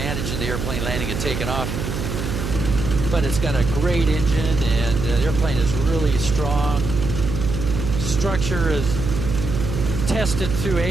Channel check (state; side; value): noise; right; hum, 4 dB below the sound